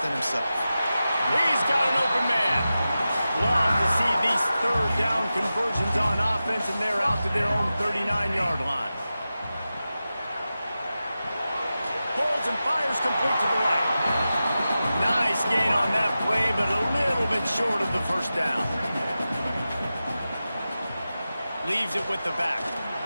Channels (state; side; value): inverted; both; correlation -0.93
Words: himself. He's got an open man. Love to see these 3rd down conversions on offense, and they're out to their own 39-yard line. Pulls and fires complete to the right. Nice gain on that play, but a little bit short of the 1st down. Leaves it with the back.